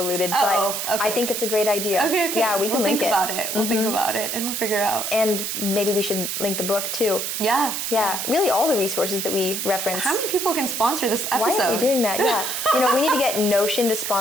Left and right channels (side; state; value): right; noise; hiss, 3 dB below the sound